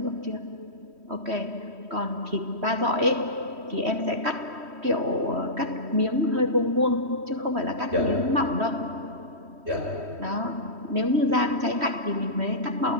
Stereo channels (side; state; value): left; late; 3.1 ms